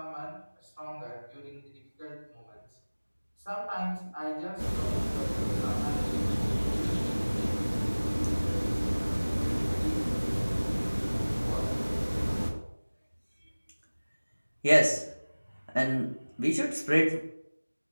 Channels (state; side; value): inverted; both; correlation -1.00